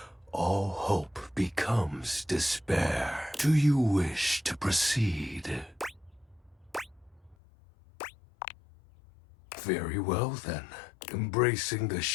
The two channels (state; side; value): drops out; right; at 7.4 s